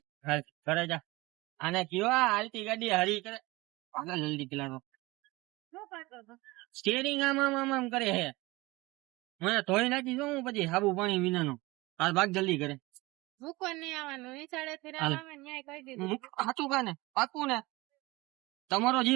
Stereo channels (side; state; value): left; quieter; 21.9 dB